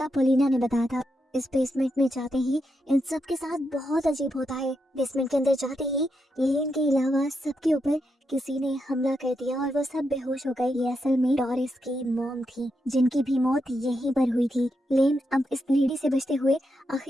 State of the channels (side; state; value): both; normal; correlation 0.84